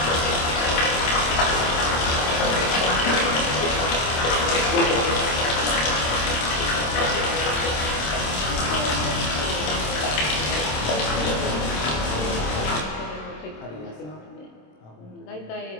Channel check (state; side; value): late; right; 27 ms